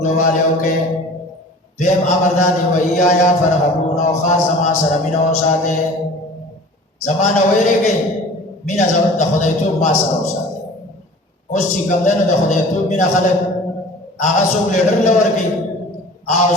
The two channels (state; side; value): normal; both; correlation 0.43